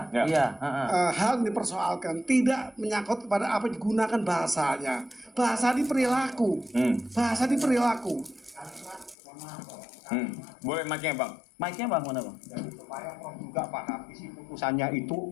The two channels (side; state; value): right; drops out; at 9.2 s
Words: Hal yang dipersoalkan tidak menyangkut kepada apa digunakan bahasanya. Bahasa di perilaku. Bahasa di perilaku. Boleh mic-nya, Bang. Mic-nya, Bang, mana, Bang? Jadi supaya Prof juga paham isi putusannya itu